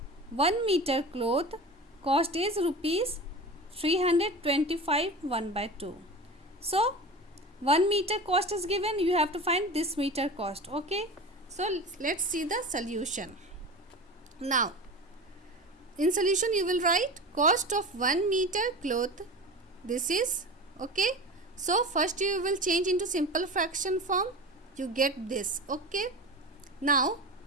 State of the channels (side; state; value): both; normal; correlation 0.31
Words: 1 meter cloth cost is rupees 325 1 by 2. So 1 meter cost is given, you have to find this meter cost. Okay, so let's see the solution. Now in solution you will write cost of 1 meter cloth. This is okay. So first you will change into simple fraction form, you get this. Okay, now